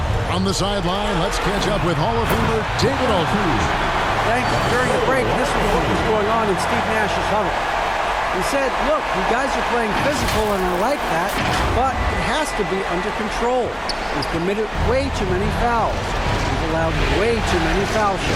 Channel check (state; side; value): identical; both; correlation 1.00